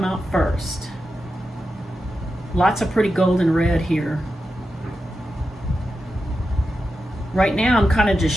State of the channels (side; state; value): both; normal; correlation 0.89